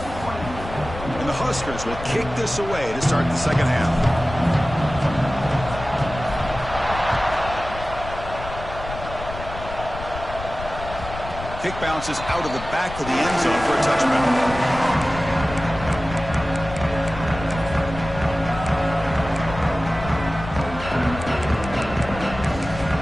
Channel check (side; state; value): left; noise; rumble, 11 dB below the sound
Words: And the Huskers will kick this away to start the second half. Kick bounces out of the back of the end zone for a touchback.